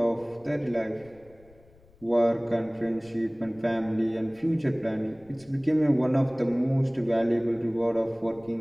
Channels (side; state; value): left; noise; rumble, 28 dB below the sound